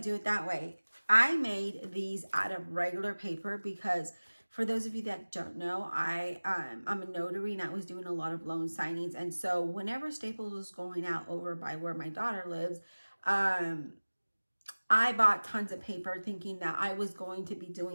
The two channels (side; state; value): both; inverted; correlation -1.00